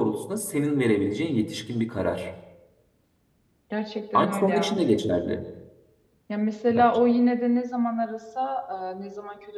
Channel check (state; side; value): identical; both; correlation 1.00